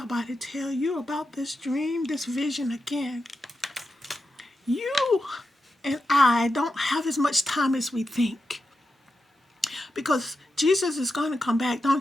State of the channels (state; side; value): normal; both; correlation 0.88